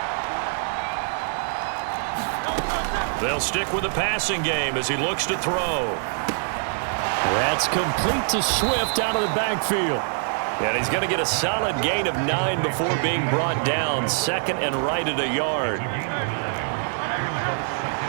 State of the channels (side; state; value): left; silent; digital silence